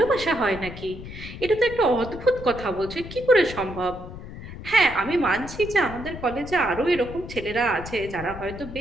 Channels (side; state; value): left; noise; rumble, 12 dB below the sound